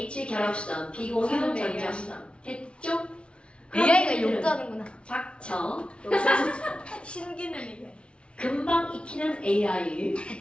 결합선, 비공유 전자선. 됐죠? AI가 욕도 하는구나. 닥쳐. 신기능이네. 금방 익히는 AI.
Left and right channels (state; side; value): late; right; 0.059 ms